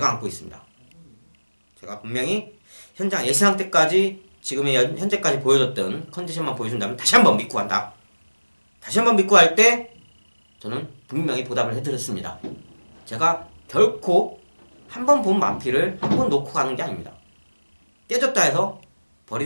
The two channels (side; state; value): both; inverted; correlation -1.00